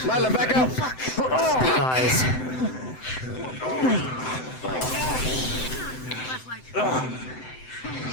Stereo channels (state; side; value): late; right; 7.8 ms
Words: Lila, back up! Size.